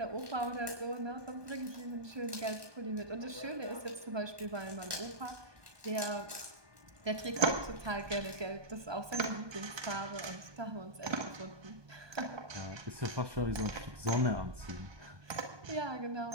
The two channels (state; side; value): late; left; 1.1 ms